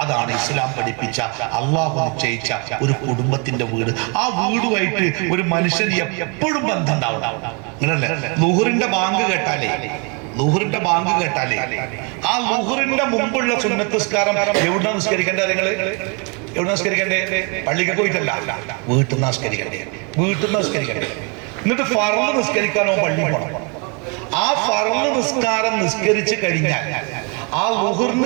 അതാണ് ഇസ്ലാം പഠിപ്പിച്ച, അള്ളാഹു നിശ്ചയിച്ച ഒരു കുടുംബത്തിന്റെ വീട്. ആ വീടുമായിട്ട് ഒരു മനുഷ്യന് എപ്പോഴും ബന്ധം ഉണ്ടാവണം. അങ്ങനല്ലേ? ളുഹറിന്റെ ബാങ്ക് കേട്ടാലേ, ളുഹറിന്റെ ബാങ്ക് കേട്ടാലേ ആ ളുഹറിന്റെ മുമ്പുള്ള സുന്നത്ത് നിസ്കാരം എവിടെ നിസ്കരിക്കേണ്ടത്? നിങ്ങള് എവിടെ നിസ്കരിക്കണ്ടേ? പള്ളിക്ക് പോയിട്ടല്ല, വീട്ടിൽ നിന്ന് നിസ്കരിക്കണ്ടേ. വീട്ടിൽ നിന്ന് നിസ്കരിക്കണ്ടേ. എന്നിട്ട് ഫർള് നിസ്കരിക്കാനോ പള്ളി പോകണം. ആ ഫർള് നിസ്കാരം നിസ്കരിച്ചു കഴിഞ്ഞാൽ ആ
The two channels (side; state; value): left; quieter; 33.8 dB